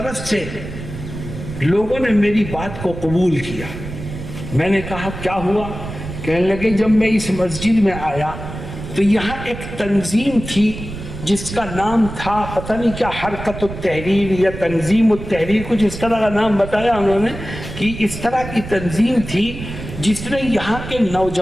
سے لوگوں نے میری بات کو قبول کیا۔ میں نے کہا کیا ہوا؟ کہنے لگے جب میں اس مسجد میں آیا تو یہاں ایک تنظیم تھی جس کا نام تھا پتہ نہیں کیا، حرکت التحریر یا تنظیم التحریر، کچھ اس طرح کا نام بتایا انہوں نے، کہ اس طرح کی تنظیم تھی جس نے یہاں کے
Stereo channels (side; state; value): right; noise; rumble, 10 dB below the sound